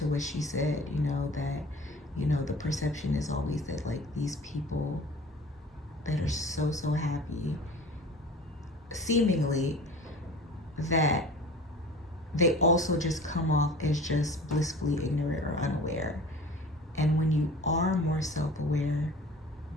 what she said, that the perception is always that like these people that are so happy, seemingly, that they also just come off as just blissfully ignorant or unaware. And when you are more self-aware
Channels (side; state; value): both; normal; correlation 0.42